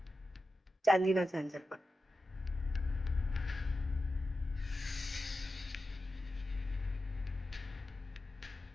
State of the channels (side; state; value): both; normal; correlation 0.91